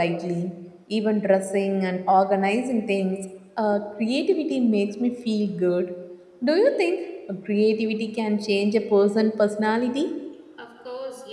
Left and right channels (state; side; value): identical; both; correlation 1.00